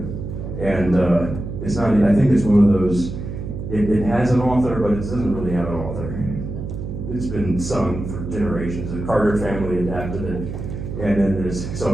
And it's not, I think it's one of those, it has an author, but it doesn't really have an author. It's been sung for generations. The Carter family adapted it. And then there's, so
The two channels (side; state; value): right; noise; hum, 7 dB below the sound